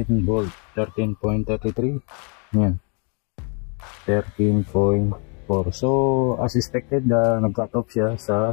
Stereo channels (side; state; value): right; quieter; 37.7 dB